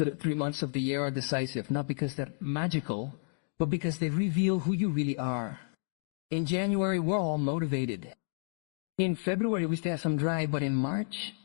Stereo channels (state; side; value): silent; right; digital silence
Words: 3 months of the year are decisive, not because they're magical, but because they reveal who you really are. In January, we're all motivated. In February, we still have some drive, but in March,